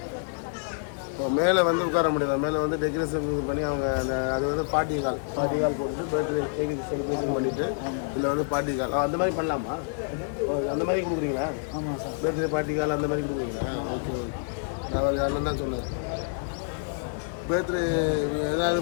இப்போ மேலே வந்து உட்கார முடியல, மேலே வந்து டெக்கரேஷன் பண்ணி அவங்க அந்த அது வந்து பார்ட்டி கால் போட்டு பர்த்டே கேக் செலிப்ரேஷன் பண்ணிவிட்டு இதில் வந்து பார்ட்டி கால் அந்த மாதிரி பண்ணலாமா? அந்த மாதிரி கொடுக்குறீங்களா? பர்த்டே பார்ட்டி கால் அந்த மாதிரி கொடுக்குறீங்களா? Okay okay. நான் யாரும் தான் சொன்னார் பர்த்டே ஏதாவது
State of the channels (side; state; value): right; silent; 60 dB below the other